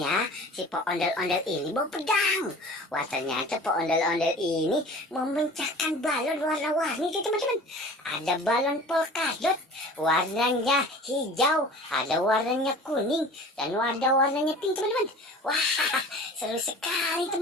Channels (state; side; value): normal; both; correlation 0.42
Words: ya? Si Pak ondel-ondel ini bawa pedang. Wah, ternyata Pak ondel-ondel ini memecahkan balon warna-warni tuh teman-teman. Ada balon polkadot, warnanya hijau, ada warnanya kuning, dan warnanya pink teman-teman. Wah, seru sekali